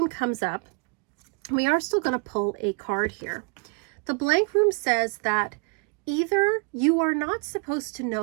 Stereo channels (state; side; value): quieter; left; 33.5 dB